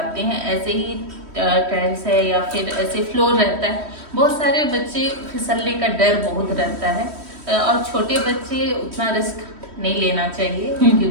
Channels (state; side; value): late; left; 3.1 ms